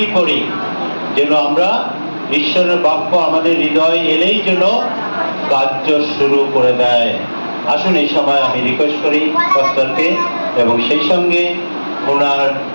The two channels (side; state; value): both; inverted; correlation -1.00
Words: করি, যেন আমরা ঈশ্বরের বাক্য আমাদের হৃদয় এলেই যেন কার্য শুরু করে দেয়। আসুন এই সময় আমি রিকোয়েস্ট করি পাস্টারকে, এবং সেই সঙ্গে ওনার